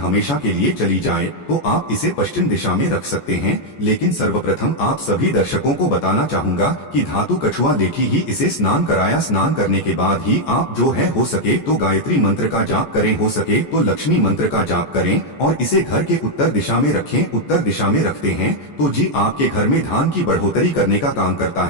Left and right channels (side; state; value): right; late; 14 ms